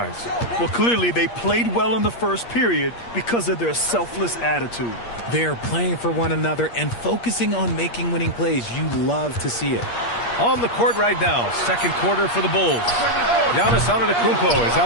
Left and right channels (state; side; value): late; right; 8.5 ms